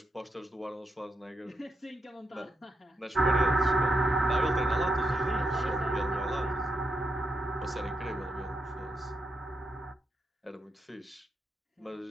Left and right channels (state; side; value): normal; both; correlation 0.83